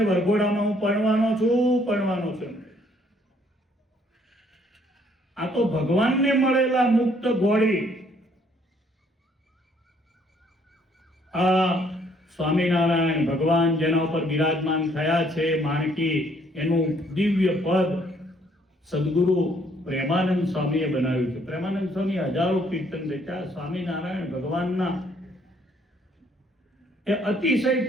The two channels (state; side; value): normal; both; correlation 0.65